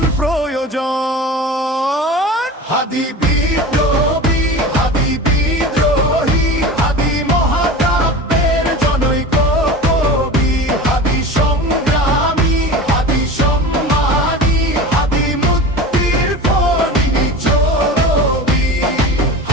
প্রয়োজন। হাদি বিদ্রোহী, হাদি বিদ্রোহী, হাদি মহাকাব্যের জনৈক কবি। হাদি সংগ্রামী, হাদি সম্মানী, হাদি মুক্তির ফণি চরবি।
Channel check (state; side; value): normal; both; correlation 0.33